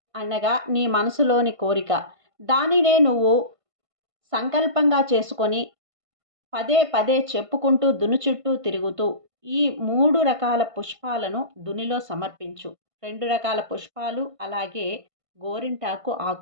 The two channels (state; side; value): late; left; 1.5 ms